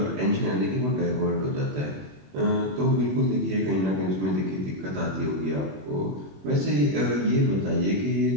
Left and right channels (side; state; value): left; late; 21 ms